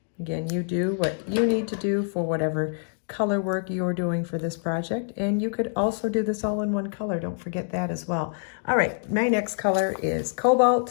Again, you do what you need to do for whatever color work you're doing for this project. And you could also do this all in one color. Don't forget that as well. All right, my next color is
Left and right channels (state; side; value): silent; right; digital silence